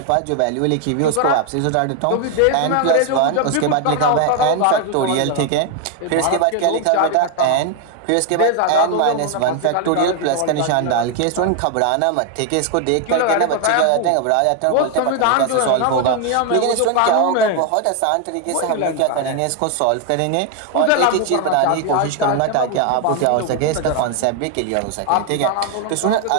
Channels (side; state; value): both; different; correlation 0.01